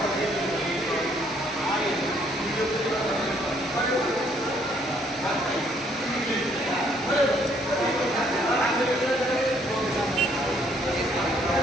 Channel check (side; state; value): both; normal; correlation 0.66